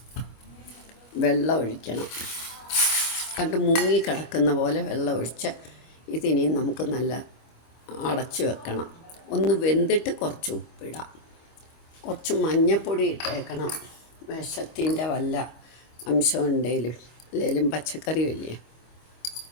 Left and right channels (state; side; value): late; right; 25 ms